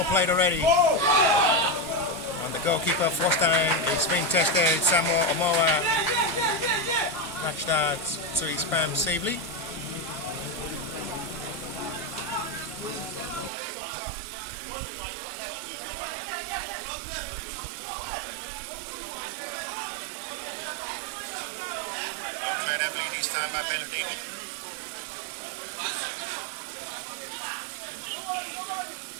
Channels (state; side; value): drops out; left; at 13.5 s